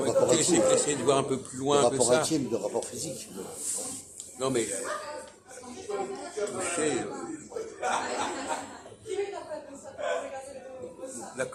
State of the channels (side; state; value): both; identical; correlation 1.00